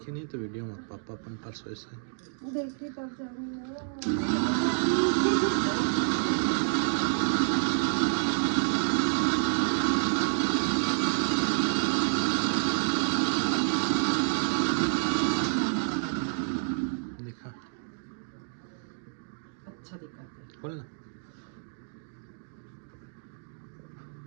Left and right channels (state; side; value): silent; left; digital silence